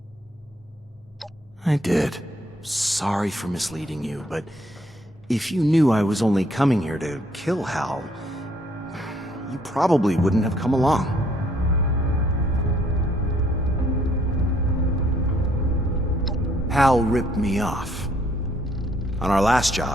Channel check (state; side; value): normal; both; correlation 0.66